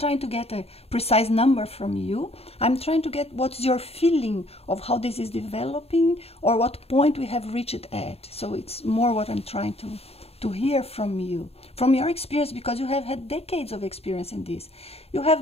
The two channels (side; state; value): right; late; 0.29 ms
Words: to get a precise number from you. I'm trying to get what's your feeling of how this is developing or what point we have reached at. So it's more what I'm trying to hear from you, from your experience, because you have had decades of experience in this. You